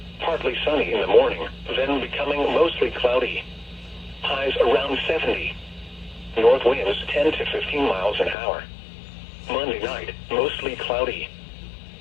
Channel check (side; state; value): right; drops out; at 8.3 s